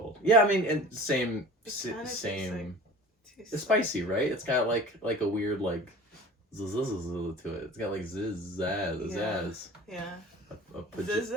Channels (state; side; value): normal; both; correlation 0.40